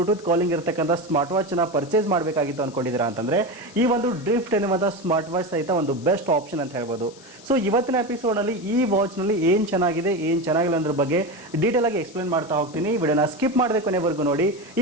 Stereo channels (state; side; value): noise; left; hiss, 22 dB below the sound